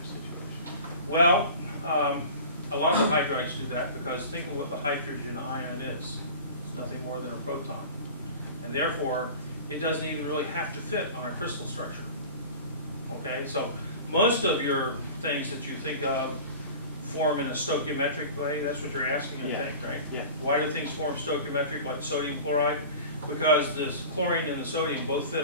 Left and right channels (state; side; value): inverted; both; correlation -0.37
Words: Well, a lot of the hydrides do that because think of what the hydrogen ion is. It's nothing more than a proton. And therefore, it doesn't even really have to fit on a crystal structure. Okay, so most of your things that you think of form in a stoichiometric way. That's what you're asking, I think, right? Yeah. Why do things form stoichiometric, like sodium chloride? Because the chlorine and the sodium both fit